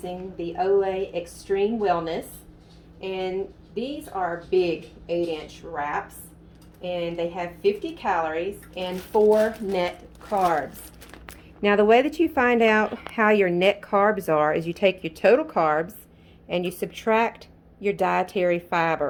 the Olay Extreme Wellness, and these are big 8-inch wraps, and they have 50 calories and 4 net carbs. Now the way that you find out how your net carbs are is you take your total carbs and you subtract your dietary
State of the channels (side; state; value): both; identical; correlation 1.00